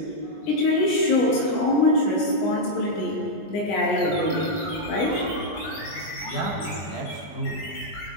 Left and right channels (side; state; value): right; late; 20 ms